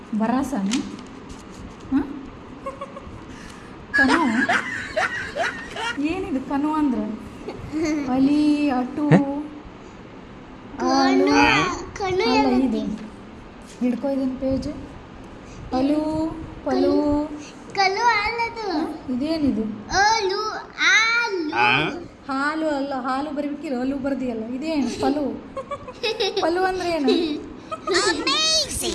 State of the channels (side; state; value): both; identical; correlation 1.00